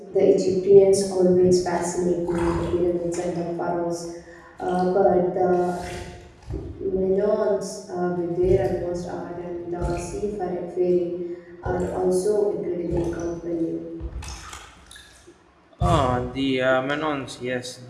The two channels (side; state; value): both; identical; correlation 1.00